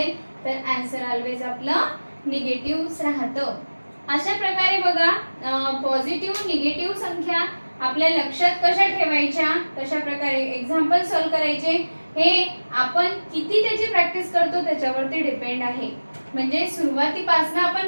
तर आन्सर ऑलवेज आपलं निगेटिव्हच राहतं. अशा प्रकारे बघा पॉझिटिव्ह निगेटिव्ह संख्या आपल्या लक्षात कशा ठेवायच्या, कशा प्रकारे एक्झाम्पल सॉल्व करायचे हे आपण किती त्याची प्रॅक्टिस करतो त्याच्यावरती डिपेंड आहे. म्हणजे सुरुवातीपासून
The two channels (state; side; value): inverted; both; correlation -1.00